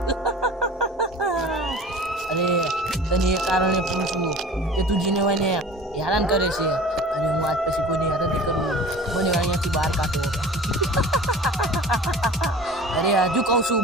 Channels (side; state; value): both; normal; correlation 0.41